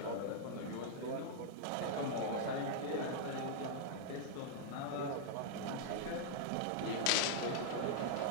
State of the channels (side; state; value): both; different; correlation -0.02